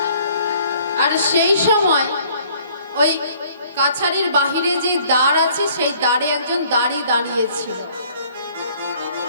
আর সেই সময় ওই কাছারির বাহিরে যে দ্বার আছে সেই দ্বারে একজন দাঁড়িয়েছিল।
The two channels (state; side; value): inverted; both; correlation -0.58